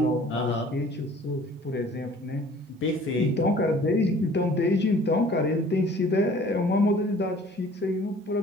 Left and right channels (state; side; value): normal; both; correlation 0.51